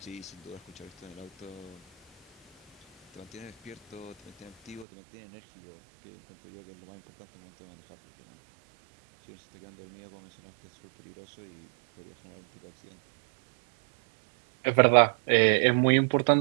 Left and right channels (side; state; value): left; drops out; at 4.9 s